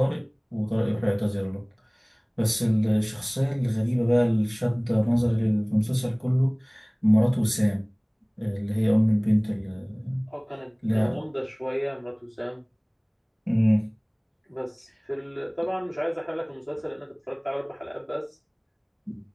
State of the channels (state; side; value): identical; both; correlation 1.00